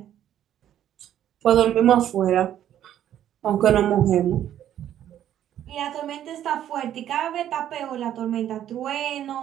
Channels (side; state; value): left; quieter; 11.1 dB